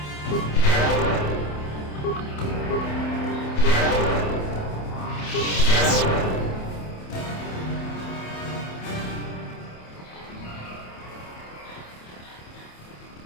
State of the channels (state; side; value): late; right; 28 ms